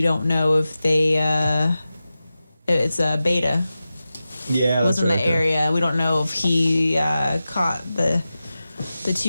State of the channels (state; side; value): inverted; both; correlation -0.94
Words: don't know if they. It's a Beta. Yeah, was that's in right the area. We don't know if he caught the